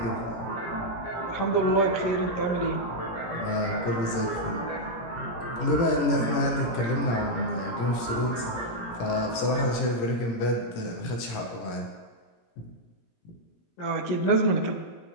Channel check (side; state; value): right; late; 17 ms